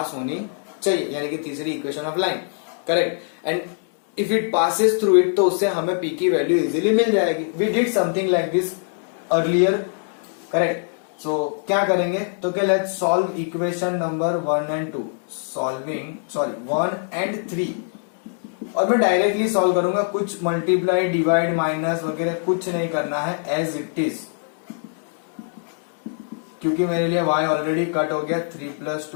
होनी चाहिए, यानी कि तीसरी equation of line, correct. And if it passes through it तो उससे हमें पी की वैल्यू इजीली मिल जाएगी। We did something like this earlier, correct. So क्या करेंगे तो क्या, let's solve equation number 1 and 2, solving 1 and 3, और मैं डायरेक्टली सॉल्व करूंगा, कुछ मल्टीप्लाई डिवाइड माइनस वगैरह कुछ नहीं करना है, एज इट इज, क्योंकि मेरे लिए y ऑलरेडी कट हो गया। 3 +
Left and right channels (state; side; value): silent; right; 64 dB below the other